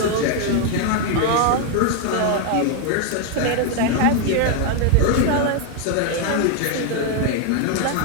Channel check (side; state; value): both; different; correlation 0.01